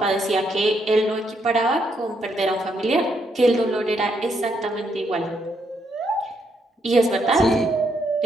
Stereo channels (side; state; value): both; normal; correlation 0.76